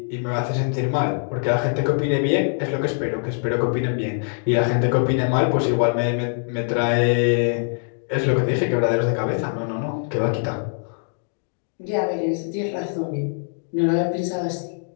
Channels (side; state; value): right; silent; digital silence